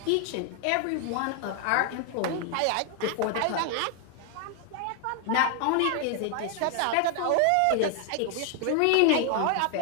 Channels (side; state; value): both; different; correlation 0.00